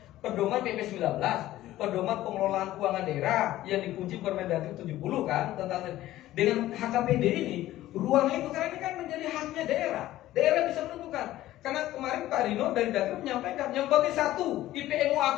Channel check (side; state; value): right; quieter; 14.9 dB